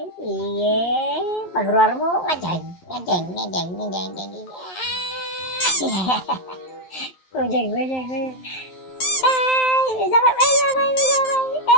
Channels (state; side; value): late; right; 11 ms